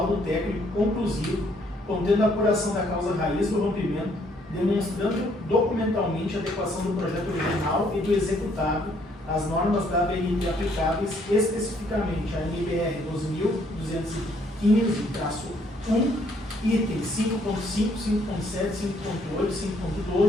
técnico conclusivo, contendo a apuração da causa raiz do rompimento, demonstrando documentalmente a adequação do projeto original e do executado às normas da ABNT aplicáveis, especificamente a NBR 2215-1, itens 5.5, 5.7, 5.8,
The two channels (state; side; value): normal; both; correlation 0.67